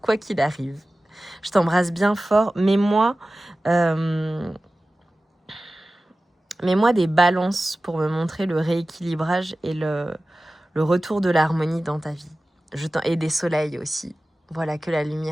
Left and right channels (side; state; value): both; normal; correlation 0.96